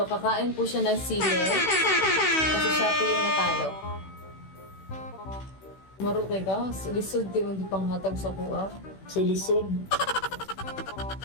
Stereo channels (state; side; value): late; right; 16 ms